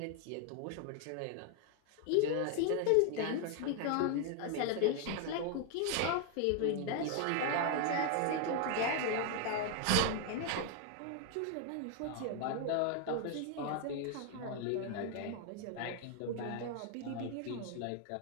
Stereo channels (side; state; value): both; different; correlation 0.00